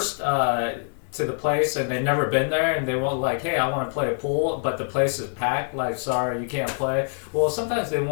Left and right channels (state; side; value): silent; right; digital silence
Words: to the place and they've never been there, and they won't like, hey, I want to play a pool, but the place is packed, like, sorry, you can't play. Well, sometimes they